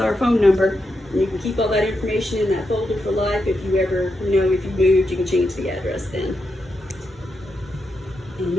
phone number. And you can keep all that information in that folder for life. If you ever, you know, if you moved, you can change the address then. And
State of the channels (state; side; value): normal; both; correlation 0.85